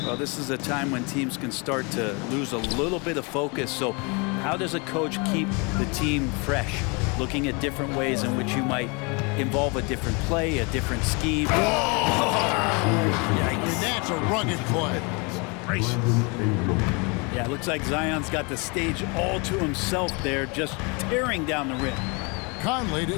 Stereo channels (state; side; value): quieter; right; 30.7 dB